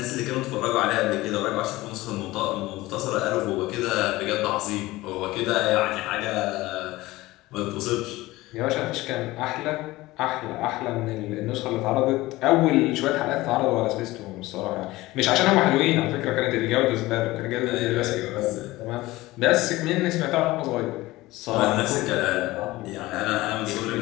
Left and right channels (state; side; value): quieter; right; 18.8 dB